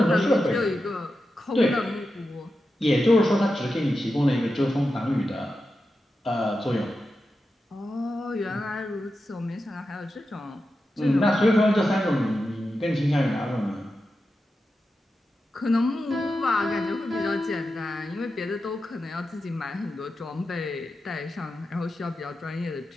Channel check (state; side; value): normal; both; correlation 0.90